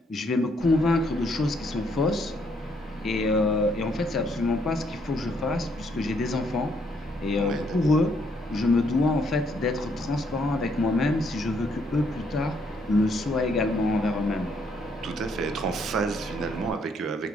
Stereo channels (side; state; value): both; normal; correlation 0.71